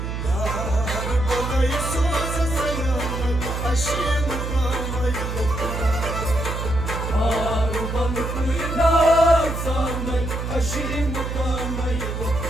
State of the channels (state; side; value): noise; right; hum, 4 dB below the sound